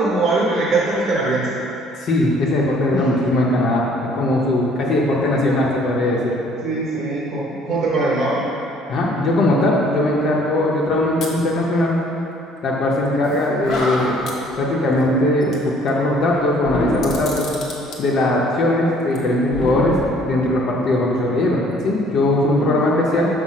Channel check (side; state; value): both; normal; correlation 0.58